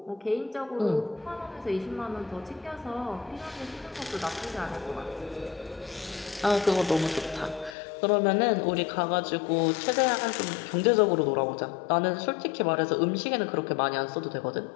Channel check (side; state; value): right; drops out; at 7.8 s